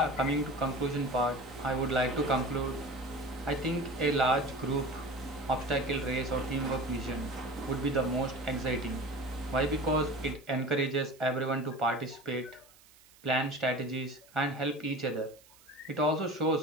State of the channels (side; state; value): right; noise; hiss, 26 dB below the sound